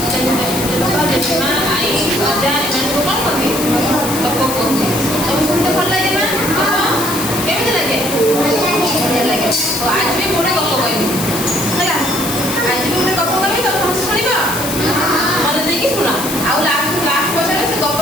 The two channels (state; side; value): noise; left; hiss, 5 dB below the sound